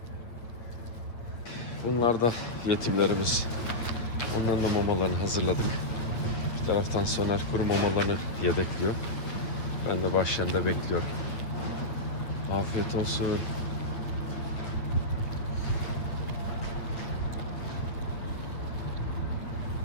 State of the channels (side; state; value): right; late; 8.8 ms